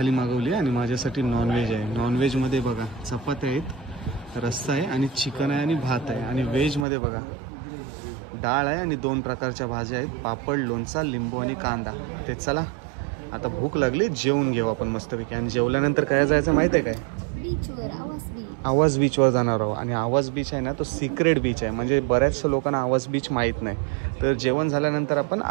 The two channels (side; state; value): left; drops out; at 6.9 s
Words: मागवली आणि माझ्यासाठी नॉनव्हेज आहे. नॉनव्हेजमध्ये बघा चपात्या आहेत, रस्सा आहे आणि चिकन आहे आणि भात आहे. आणि व्हेजमध्ये बघा डाळ आहे आणि 2 प्रकारच्या भाज्या आहेत, पापड, लोणचा, लिंबू आणि कांदा. ते चला आता भूक लागली, जेवून घेऊ आपण मस्तपैकी. आणि जेवल्यानंतर काय जायचं माहिती आहे काय? बीचवर, आवाज बीच. आवाज बीचवर जाणार आहोत. आणि आवाज बीच आहे ना तो सिक्रेट बीच आहे, म्हणजे बऱ्याचशा लोकांना आवाज बीच माहीत नाही. तर जेवण झाल्यानंतर आपण